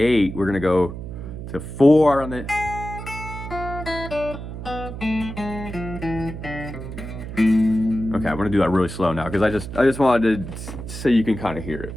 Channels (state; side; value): noise; right; hum, 9 dB below the sound